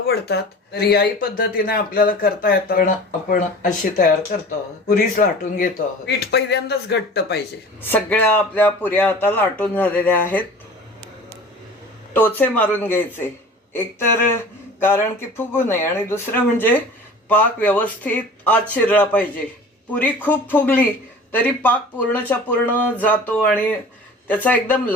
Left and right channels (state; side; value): normal; both; correlation 0.41